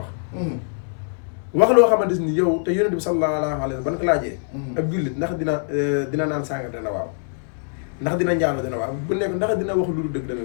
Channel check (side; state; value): right; silent; 63 dB below the other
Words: loo xamante ni yow te yonent bi sallallahu alayhi wa sallam ban ko laajee ab jullit ndax dina naan sàngar dana waaw ndax dina njaalo dana waaw bu nekk ndax dina wax lu dul dëgg dana